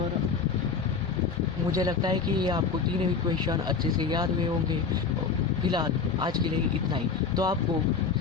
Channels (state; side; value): quieter; right; 5.4 dB